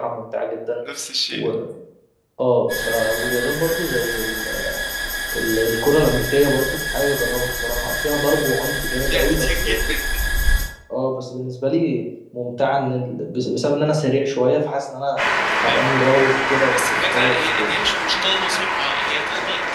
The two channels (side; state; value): both; identical; correlation 1.00